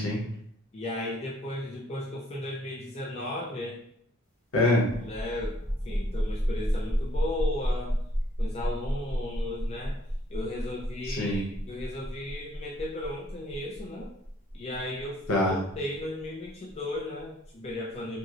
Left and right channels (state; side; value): normal; both; correlation 0.64